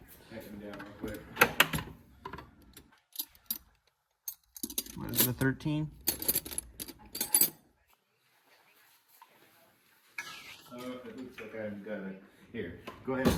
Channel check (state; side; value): identical; both; correlation 1.00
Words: Tighten them down real quick. What is it, a 13? Oh, it looks like I've got it. Here, go ahead and